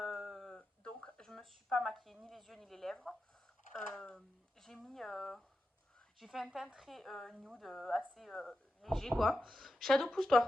donc, je me suis pas maquillée ni les yeux ni les lèvres. J'ai mis. J'ai fait un teint très nude, assez léger quoi. Shadow,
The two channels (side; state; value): both; normal; correlation 0.89